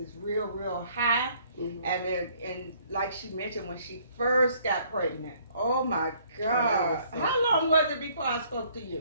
real high. And like she mentioned, when she first got pregnant, oh my God, how long was it before I spoke to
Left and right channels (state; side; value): inverted; both; correlation -0.62